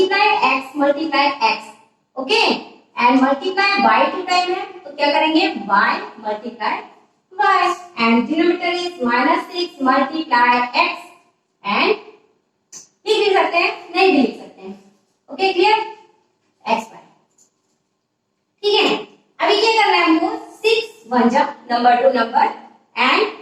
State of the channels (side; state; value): both; identical; correlation 1.00